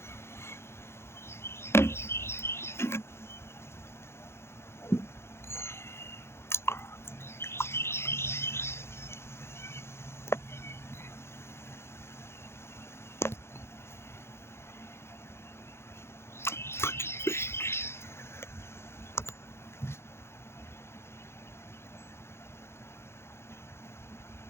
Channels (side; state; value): right; late; 0.12 ms